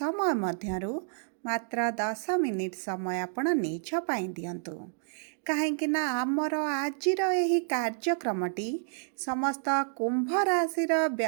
मध्यरु मात्र 10 मिनिट समय आपण निज पाई दियंतु कहीं आमर आजिर यही कार्यक्रमटी समस्त कुंभ राशि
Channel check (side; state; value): left; silent; digital silence